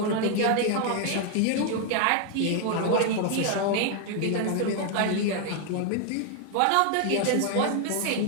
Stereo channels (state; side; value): different; both; correlation 0.00